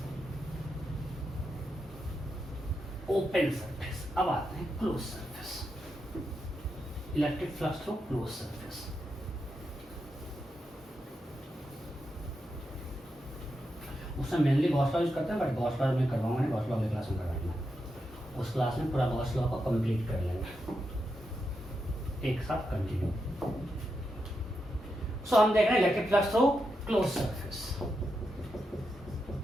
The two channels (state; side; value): normal; both; correlation 0.86